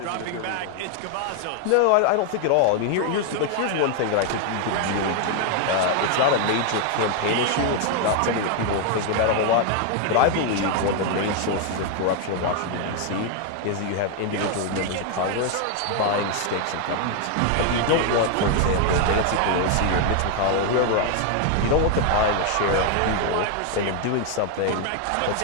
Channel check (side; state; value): both; different; correlation 0.01